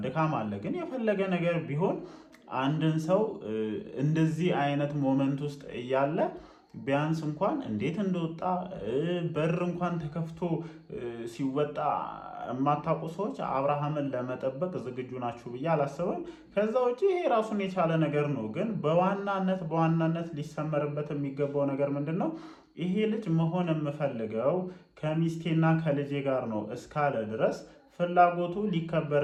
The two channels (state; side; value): identical; both; correlation 1.00